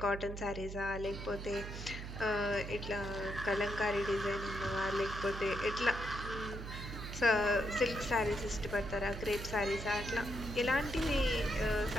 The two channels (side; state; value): right; noise; hum, 8 dB below the sound